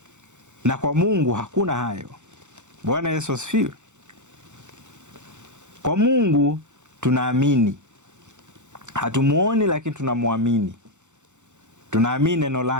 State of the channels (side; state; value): left; late; 0.84 ms